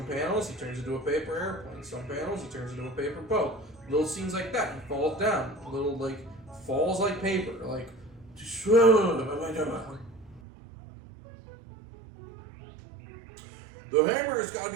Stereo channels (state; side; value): drops out; left; at 10.4 s